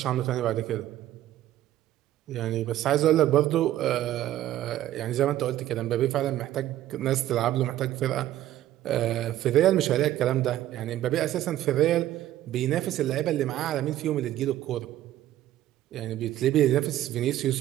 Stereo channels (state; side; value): quieter; left; 13.4 dB